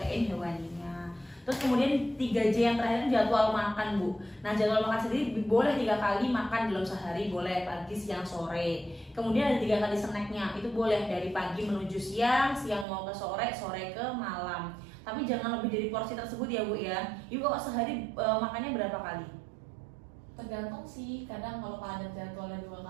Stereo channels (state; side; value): drops out; left; at 12.9 s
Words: hewaninya. Terus kemudian 3J yang terakhir itu jadwal makan Bu. Nah, jadwal makan sendiri boleh 3 kali makan dalam sehari, boleh pagi, siang, sore. Kemudian ada 3 kali snacknya, itu boleh dari pagi menuju siang, siang mau ke sore, sore ke malam. Tapi jangan lebih dari porsi tersebut ya Bu ya. Ibu kok sehari makannya berapa kali? Tergantung sih, kadang kalau padat jadwalnya 2